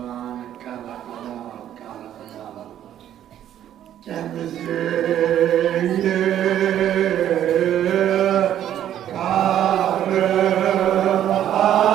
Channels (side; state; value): left; quieter; 11.1 dB